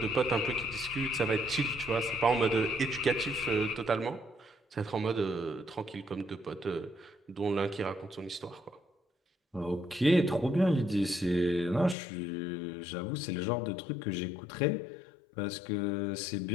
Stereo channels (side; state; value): right; drops out; at 12.0 s